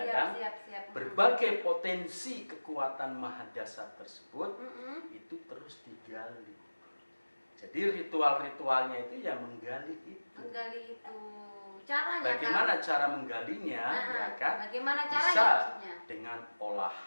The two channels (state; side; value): inverted; both; correlation -1.00